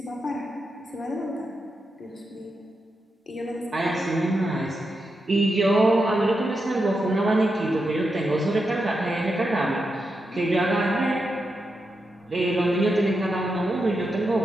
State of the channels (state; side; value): normal; both; correlation 0.86